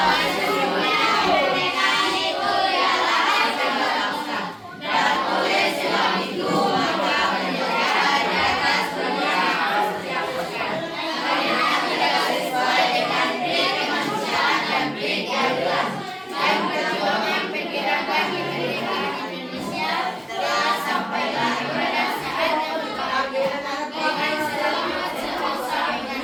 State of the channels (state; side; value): identical; both; correlation 1.00